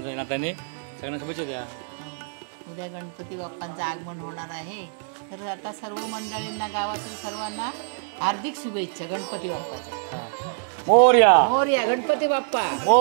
नात्याने सगळ्यांना शुभेच्छा द्या. उद्या गणपती बाप्पांचं आगमन होणार आहे, तर आता सर्व मंडळींना गावातील सर्वांना हार्दिक शुभेच्छा गणपती बाप्पाच्या. मोरया मोरया गणपती बाप्पा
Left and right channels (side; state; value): left; silent; digital silence